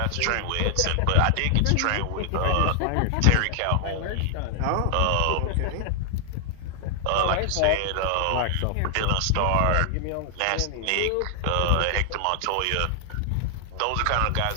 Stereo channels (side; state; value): both; different; correlation 0.00